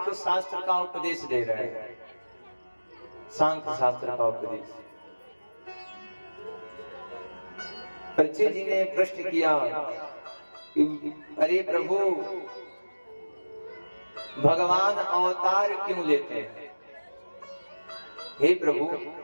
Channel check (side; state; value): both; inverted; correlation -1.00